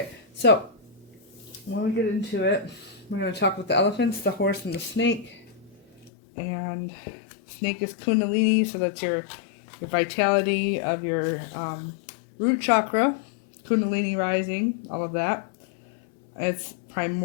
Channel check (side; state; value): right; drops out; at 6.1 s